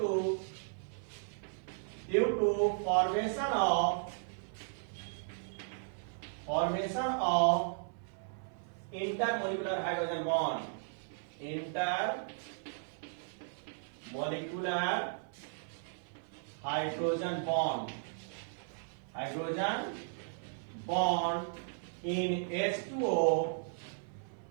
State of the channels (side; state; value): left; silent; 54 dB below the other